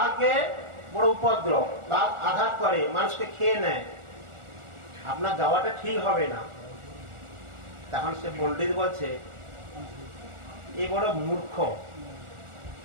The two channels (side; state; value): left; late; 1.4 ms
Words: বড় উপদ্রব, বাঘ আঘাত করে, মানুষকে খেয়ে নেয়, আপনার যাওয়াটা ঠিক হবে না। তখন সে পণ্ডিত বলছে এ বড় মূর্খ,